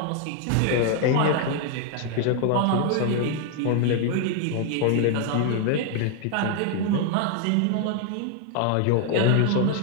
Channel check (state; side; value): different; both; correlation 0.00